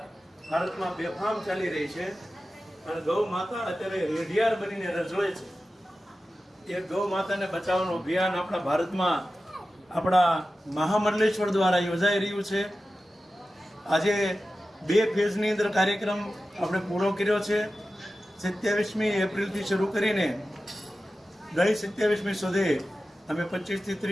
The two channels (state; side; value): normal; both; correlation 0.94